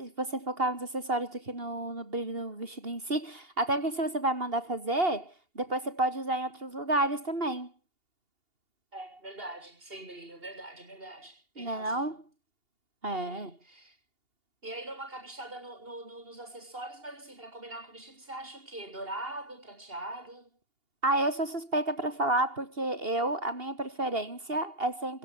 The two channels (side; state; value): left; late; 2.8 ms